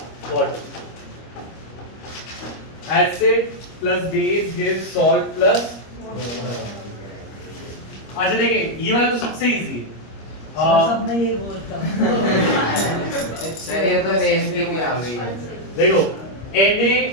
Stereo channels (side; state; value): right; late; 25 ms